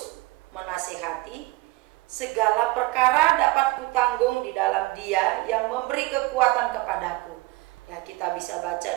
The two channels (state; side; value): quieter; left; 21.0 dB